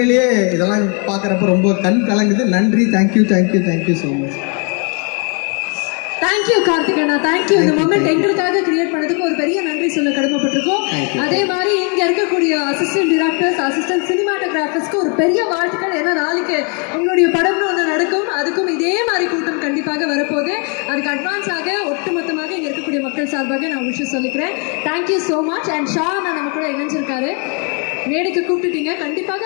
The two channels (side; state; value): right; quieter; 36.3 dB